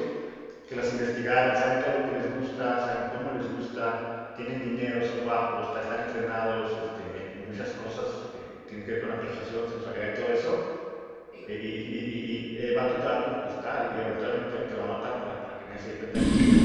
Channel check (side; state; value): both; identical; correlation 1.00